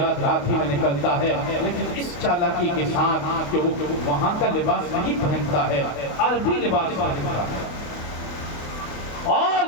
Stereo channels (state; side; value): late; right; 28 ms